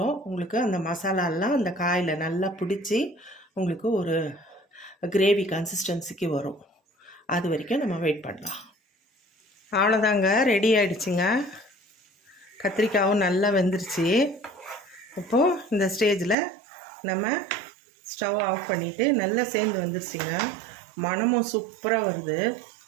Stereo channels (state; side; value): drops out; left; at 16.4 s